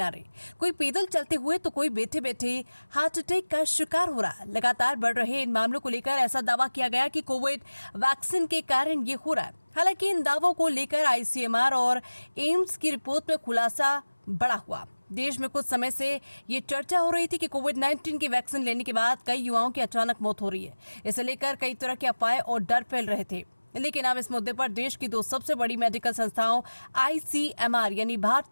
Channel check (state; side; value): inverted; both; correlation -1.00